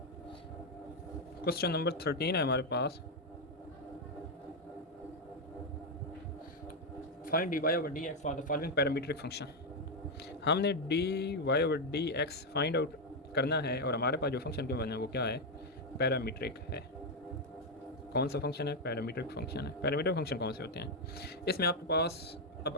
क्वेश्चन नंबर 13 है हमारे पास, find dy over dx for the following parametric function. हमने dy over dx find out करना है, और हमारे पास जो फंक्शन के बना है वो क्या है, पैरामीट्रिक है। कौन सा फंक्शन है, पैरामीट्रिक फंक्शन है। पैरामीट्रिक फंक्शन कौन से होते हैं, इसमें आपके पास,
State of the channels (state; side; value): normal; both; correlation 0.04